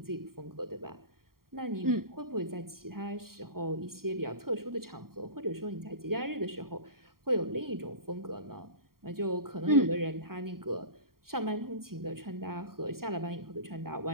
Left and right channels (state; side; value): late; left; 0.93 ms